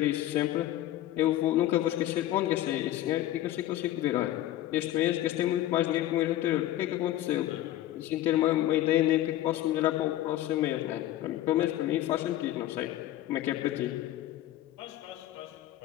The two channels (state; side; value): quieter; right; 14.1 dB